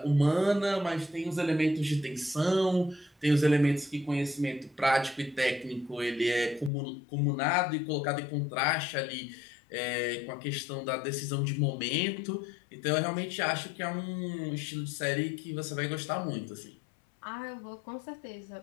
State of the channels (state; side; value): drops out; right; at 6.7 s